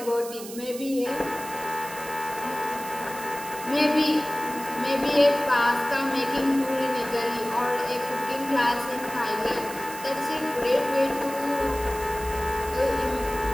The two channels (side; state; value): right; noise; hiss, 13 dB below the sound